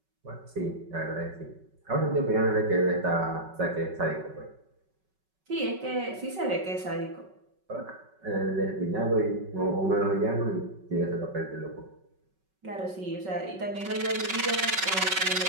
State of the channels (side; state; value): left; late; 5.3 ms